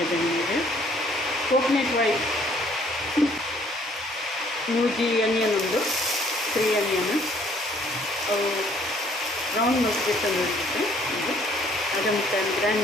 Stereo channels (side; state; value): both; normal; correlation 0.61